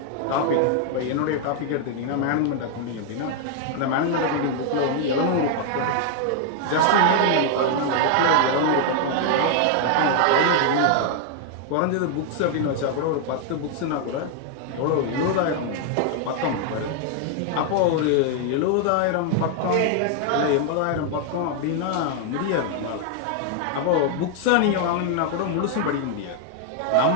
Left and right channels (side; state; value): both; different; correlation 0.00